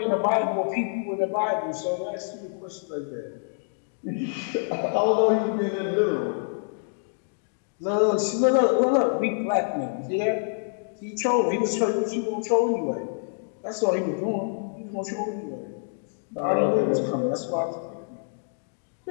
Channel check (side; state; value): right; silent; digital silence